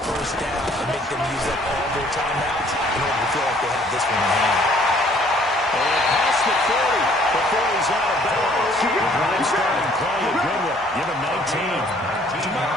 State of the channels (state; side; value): normal; both; correlation 0.59